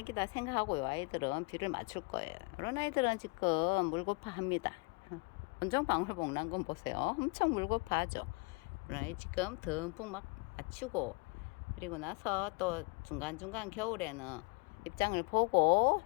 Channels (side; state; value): right; quieter; 29.6 dB